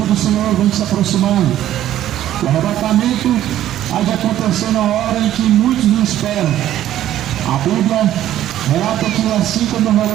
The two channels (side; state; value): left; quieter; 12.5 dB